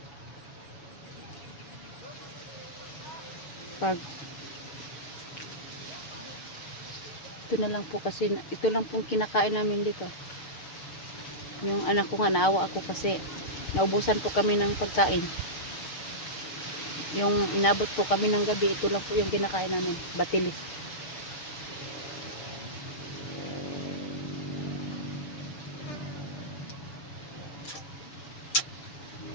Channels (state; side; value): late; right; 6.7 ms